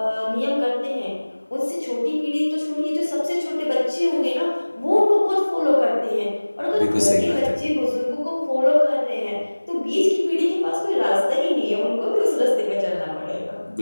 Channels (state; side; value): inverted; both; correlation -1.00